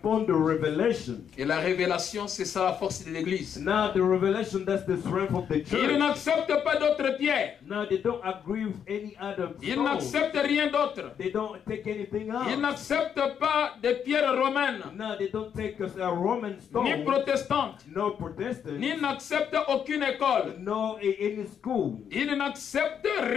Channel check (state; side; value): quieter; right; 8.1 dB